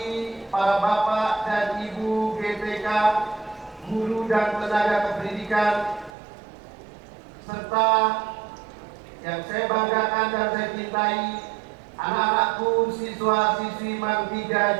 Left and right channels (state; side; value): drops out; left; at 6.1 s